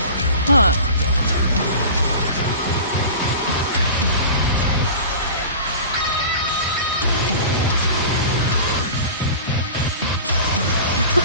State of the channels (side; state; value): both; inverted; correlation -0.36